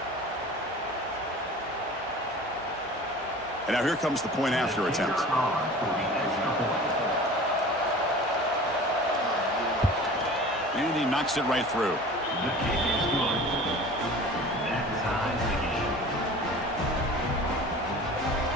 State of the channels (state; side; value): normal; both; correlation 0.41